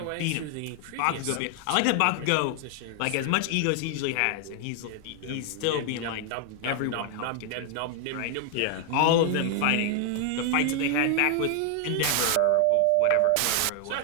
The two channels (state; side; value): different; both; correlation 0.00